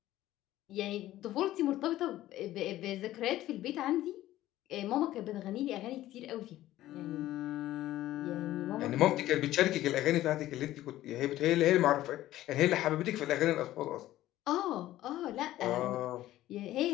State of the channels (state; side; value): quieter; right; 14.7 dB